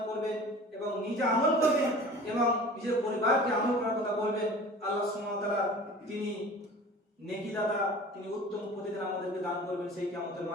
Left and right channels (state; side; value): normal; both; correlation 0.41